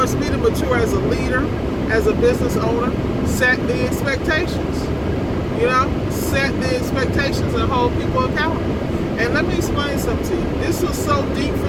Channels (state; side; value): identical; both; correlation 1.00